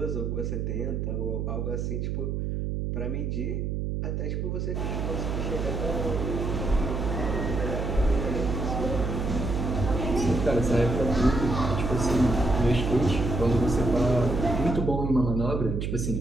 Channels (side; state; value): right; noise; hum, 1 dB below the sound